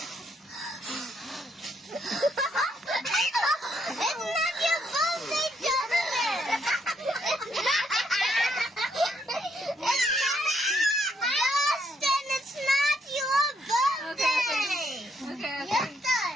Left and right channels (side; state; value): both; normal; correlation 0.73